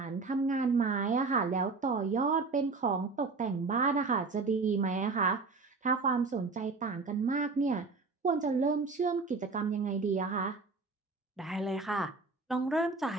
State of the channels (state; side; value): quieter; left; 4.1 dB